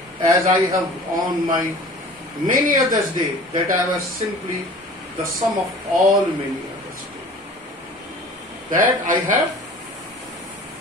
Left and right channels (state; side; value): normal; both; correlation 0.44